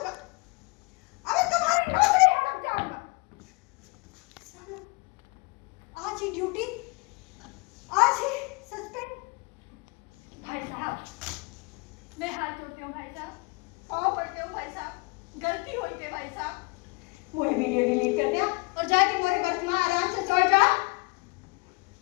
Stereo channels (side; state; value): right; quieter; 29.3 dB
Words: अबे तुम्हारी नौकरी हड़प जाऊंगा। साला, आज ही ड्यूटी, आज ही सस्पेंड। भाई साहब, मैं हाथ जोड़ती हूँ भाई साहब, पाँव पड़ते हूँ भाई साहब, गलती हुई थी भाई साहब। वही वीडियो डिलीट कर दिया और जाके मोरे बर्थ में आराम से सो जा।